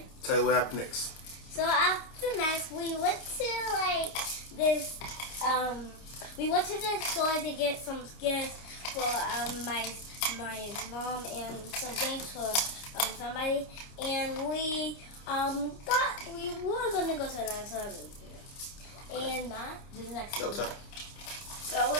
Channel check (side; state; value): right; late; 29 ms